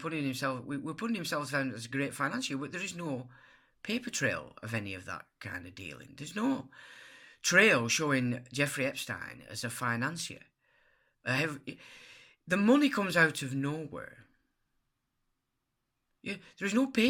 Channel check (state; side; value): identical; both; correlation 1.00